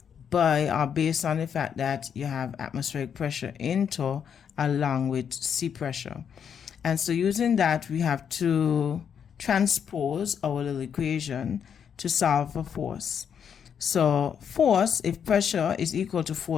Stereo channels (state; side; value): quieter; right; 7.7 dB